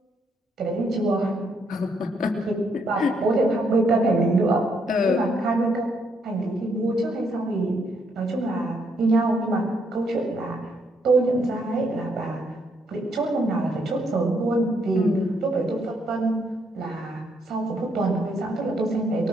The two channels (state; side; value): normal; both; correlation 0.73